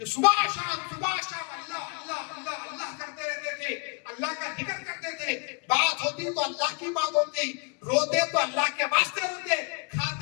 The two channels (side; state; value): right; quieter; 35.8 dB